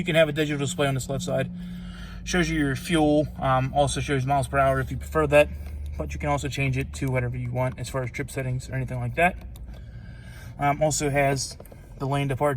can have a digital display on this left side. Shows you your fuel, also shows miles per hour if you prefer that. But you can also change it to whatever you want as far as trip settings or anything like that. Also has the lane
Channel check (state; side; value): identical; both; correlation 1.00